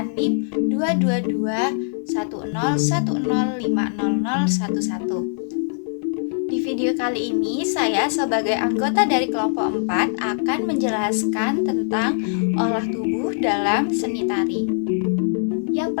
NIM 2221010500011. Di video kali ini saya sebagai anggota dari kelompok 4 akan menjelaskan tentang olah tubuh dalam seni tari. Yang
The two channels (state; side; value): silent; right; 63 dB below the other